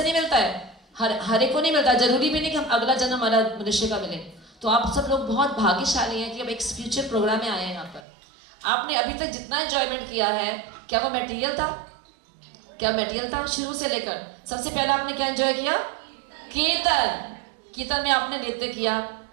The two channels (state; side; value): drops out; left; at 8.1 s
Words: नहीं मिलता है, हर एक को नहीं मिलता। जरूरी भी नहीं कि हम अगला जन्म हमारा मनुष्य का मिले। तो आप सब लोग बहुत भाग्यशाली हैं कि अब एक स्पिरिचुअल प्रोग्राम में आए हैं यहाँ पर। आपने अभी तक जितना एंजॉयमेंट किया है, क्या वो मटेरियल था? क्या मटेरियल था? शुरू से लेकर सबसे पहले आपने क्या एंजॉय किया? कीर्तन। कीर्तन में आपने नृत्य किया,